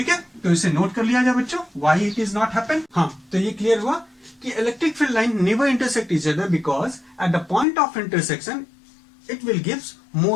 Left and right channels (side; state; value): right; drops out; at 7.7 s